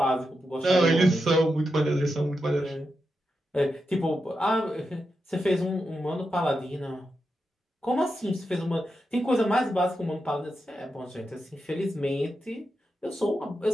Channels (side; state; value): both; normal; correlation 0.87